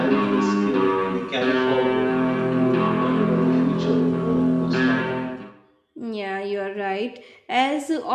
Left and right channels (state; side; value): identical; both; correlation 1.00